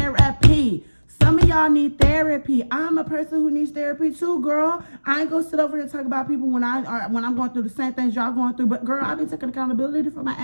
Some of y'all need therapy. I'm a person who needs therapy too, girl. I ain't gonna sit over here and talk about people when I'm going through the same things y'all going through. But girl, I've been taking accountability for my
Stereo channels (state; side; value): inverted; both; correlation -1.00